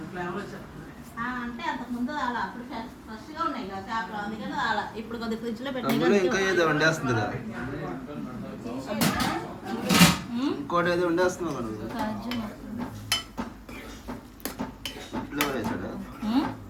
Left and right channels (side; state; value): both; identical; correlation 1.00